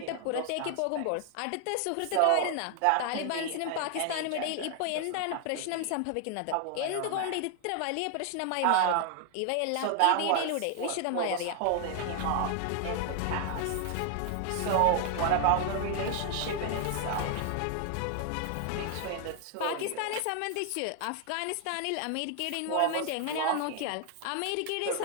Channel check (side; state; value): both; different; correlation 0.00